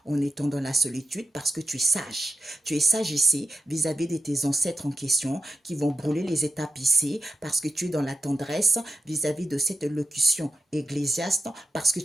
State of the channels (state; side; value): normal; both; correlation 0.90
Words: en étant dans la solitude parce que tu es sage. Tu es sage ici vis-à-vis de tes ancêtres en question qui vont brûler les étapes ici parce que tu es dans la tendresse vis-à-vis de cette locution ecclésiaste parce que